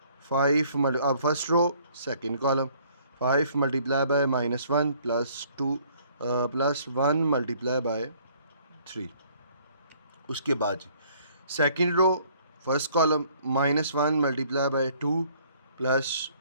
5 अब first row second column 5 multiply by -1 plus 2 plus 1 multiply by 3। उसके बाद second row first column -1 multiply by 2 plus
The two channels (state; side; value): inverted; both; correlation -0.60